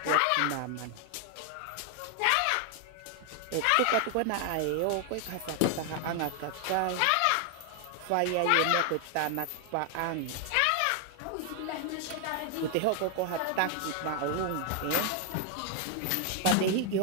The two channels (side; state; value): both; different; correlation 0.00